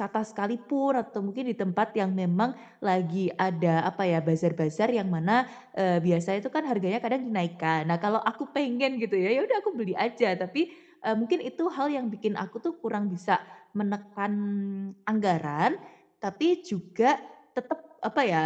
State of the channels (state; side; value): identical; both; correlation 1.00